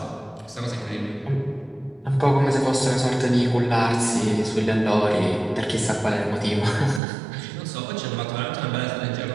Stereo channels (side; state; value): left; drops out; at 7.0 s